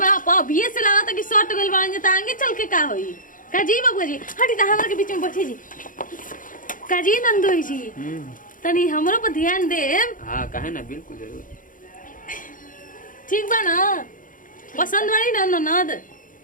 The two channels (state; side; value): late; right; 0.39 ms